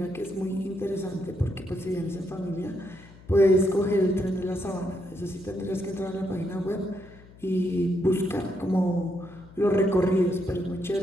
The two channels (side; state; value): left; noise; hum, 22 dB below the sound